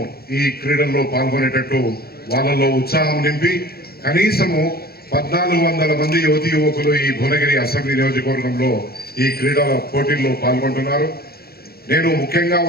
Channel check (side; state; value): right; late; 0.45 ms